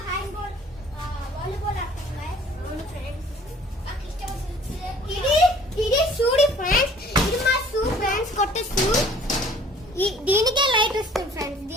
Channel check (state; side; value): normal; both; correlation 0.53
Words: hand ball volleyball ఆడుతున్నాను ఫ్రెండ్స్. నాకు ఇష్టం ఇది చూడి ఫ్రెండ్స్, ఇది మా షూ ఫ్రెండ్స్, కొత్త షూ. దీనికే లైట్ వస్తుంది ఫ్రెండ్స్,